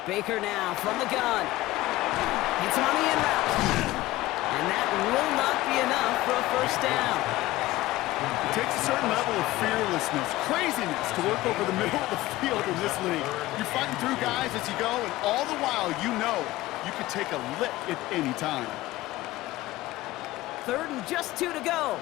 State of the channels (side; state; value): right; quieter; 17.5 dB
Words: Baker now from the gun. Hits him on the in route. And that will not be enough for a 1st down. It takes a certain level of fearlessness, craziness to work over the middle of the field in this league. You're fighting through guys as you go, and all the while you know you could take a lick at any time. 3rd and just 2 to go.